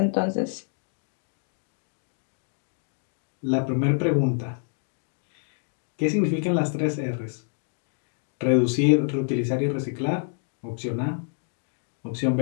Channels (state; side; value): silent; right; 60 dB below the other